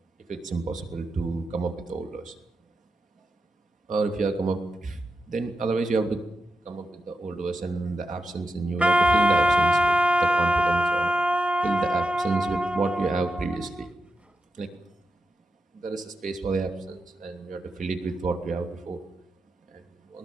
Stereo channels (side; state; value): both; normal; correlation 0.89